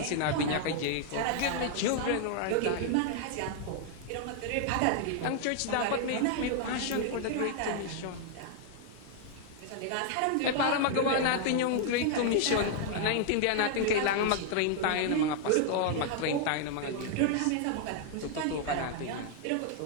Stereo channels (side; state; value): both; different; correlation 0.00